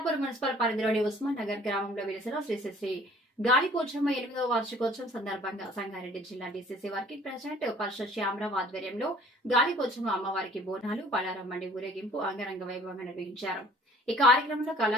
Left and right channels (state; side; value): normal; both; correlation 0.53